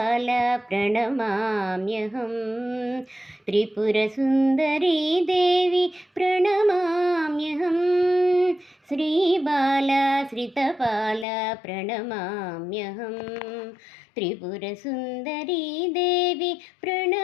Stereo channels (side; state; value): right; drops out; at 11.2 s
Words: प्रणमाम्यहं Tripurasundari Devi प्रणमाम्यहं Sribala श्रितपाला प्रणमाम्यहं Tripurasundari Devi